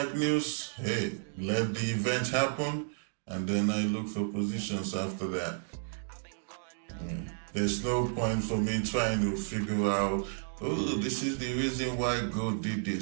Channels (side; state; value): left; silent; digital silence